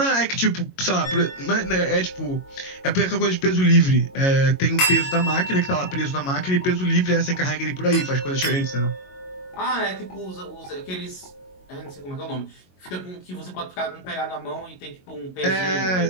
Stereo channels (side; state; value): right; late; 22 ms